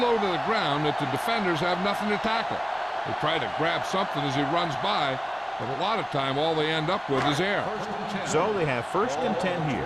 to the ground that the defenders have nothing to tackle. They try to grab something as he runs by, but a lot of time all they end up with is air. So they have first and 10 here.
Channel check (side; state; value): both; identical; correlation 1.00